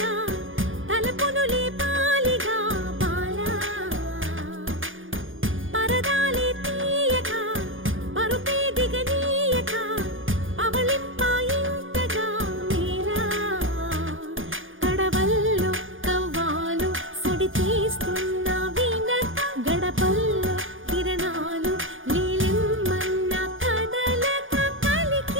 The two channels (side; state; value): left; late; 0.58 ms